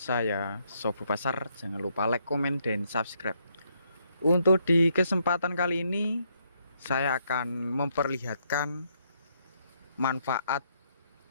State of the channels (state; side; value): inverted; both; correlation -0.74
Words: Sobo Pasar. Jangan lupa like, komen, dan subscribe. Untuk di kesempatan kali ini, saya akan memperlihatkan manfaat